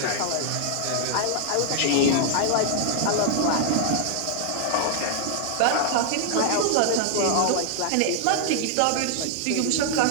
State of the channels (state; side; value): different; both; correlation -0.01